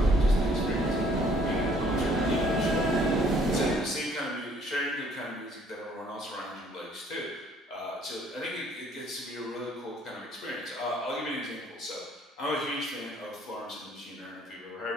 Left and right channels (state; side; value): normal; both; correlation 0.61